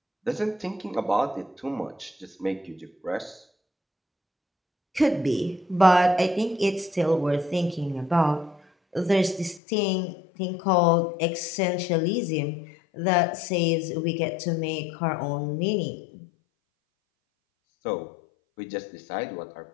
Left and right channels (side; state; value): right; drops out; at 9.6 s